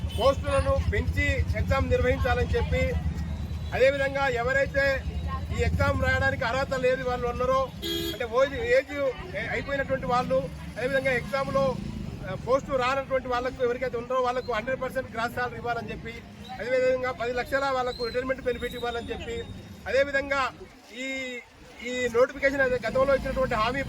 పోస్టులను పెంచి ఎగ్జామ్ నిర్వహించాలని చెప్పి, అదేవిధంగా ఎవరైతే ఈ ఎగ్జామ్ రాయడానికి అర్హత లేని వాళ్ళు ఉన్నారో, అంటే ఏజ్ అయిపోయినటువంటి వాళ్ళు, అదేవిధంగా ఎగ్జామ్లో పోస్టు రానటువంటి వాళ్ళకు ఎవరికైతే ఉన్నారో వాళ్ళకు 100% గ్రాస్ సాలరీ ఇవ్వాలని చెప్పి, అదేవిధంగా 10 లక్షల వాళ్ళకు రిటైర్మెంట్ బెనిఫిట్ ఇవ్వాలని చెప్పి, అదేవిధంగా ఈ నోటిఫికేషన్ గతంలో ఇచ్చినటువంటి హామీ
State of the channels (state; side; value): identical; both; correlation 1.00